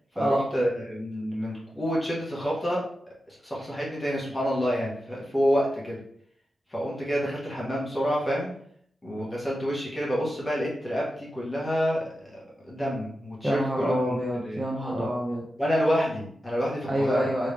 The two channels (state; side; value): normal; both; correlation 0.91